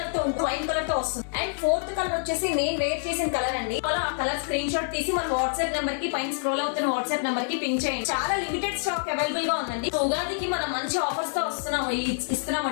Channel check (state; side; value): silent; right; 60 dB below the other